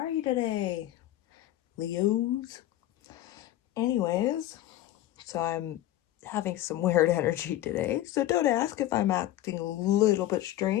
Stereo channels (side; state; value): right; quieter; 14.1 dB